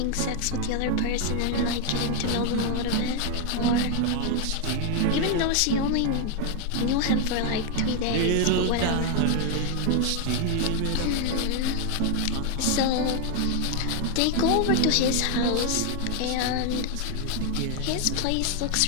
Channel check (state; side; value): different; both; correlation 0.01